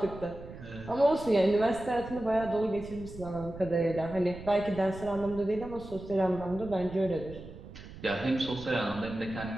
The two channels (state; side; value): noise; right; rumble, 14 dB below the sound